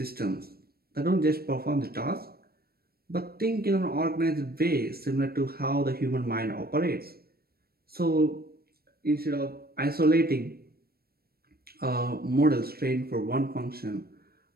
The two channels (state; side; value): late; left; 0.44 ms